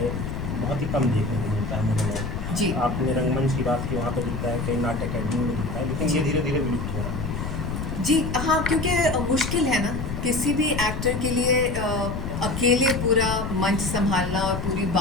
ही कम देखने को मिलता है मोनोलॉग। जी, आपने रंगमंच की बात की, वहाँ पे दिखता है, कई नाटक अकेडमी में दिखता है, लेकिन ये धीरे धीरे विलुप्त हो रहा है। जी हाँ, क्योंकि मुश्किल है ना किसी भी एक्टर के लिए, अकेले पूरा मंच संभालना और पूरी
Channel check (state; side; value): noise; left; rumble, 5 dB below the sound